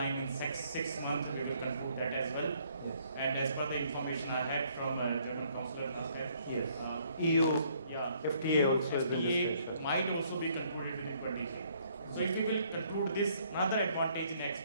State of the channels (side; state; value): both; inverted; correlation -0.65